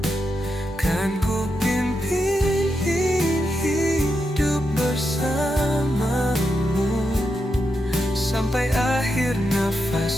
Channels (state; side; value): normal; both; correlation 0.85